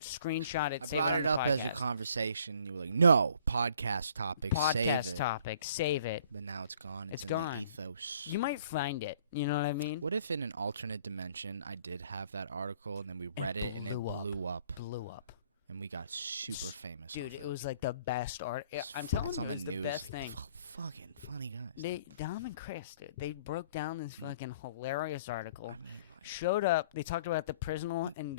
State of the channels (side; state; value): both; inverted; correlation -0.58